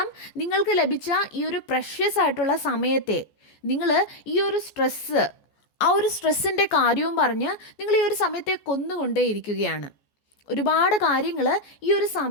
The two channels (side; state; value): right; late; 14 ms